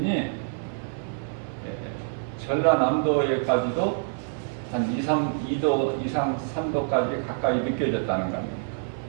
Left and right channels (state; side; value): silent; left; digital silence